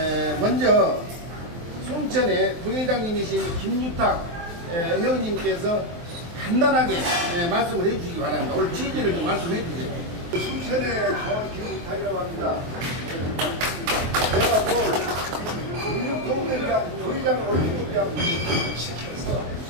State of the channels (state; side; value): late; left; 23 ms